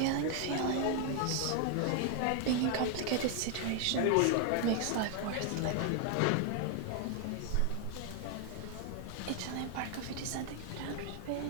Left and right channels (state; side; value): different; both; correlation 0.00